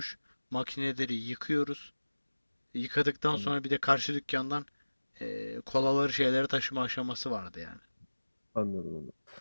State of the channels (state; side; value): inverted; both; correlation -1.00